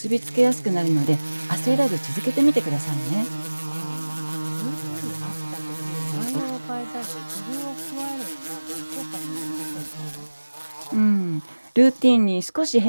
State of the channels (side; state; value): both; inverted; correlation -1.00